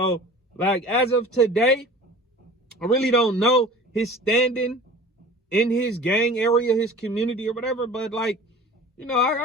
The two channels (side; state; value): both; normal; correlation 0.42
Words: like, as of today, I really don't know his standing in his gang area, his community or whatever. But, like, you know,